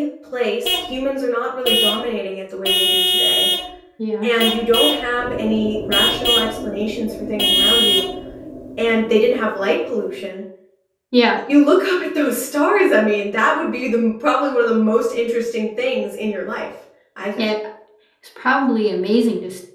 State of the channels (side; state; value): both; identical; correlation 1.00